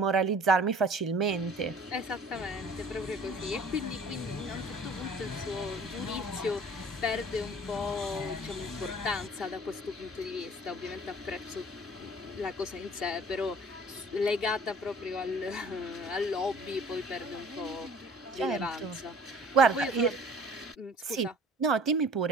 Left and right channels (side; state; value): both; normal; correlation 0.49